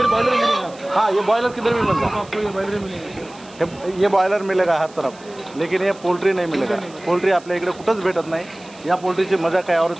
बॉयलर मिलेगा. हाँ ये बॉयलर किधर भी मिलता है. आपको ये बॉयलर मिलेगा. ये बॉयलर मिलेगा हर तरफ, लेकिन ये पोल्ट्री नाही मिळेल. पोल्ट्री आपल्या इकडे कुठंच भेटत नाही. या पोल्ट्रीची मजा काय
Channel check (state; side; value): noise; right; hiss, 24 dB below the sound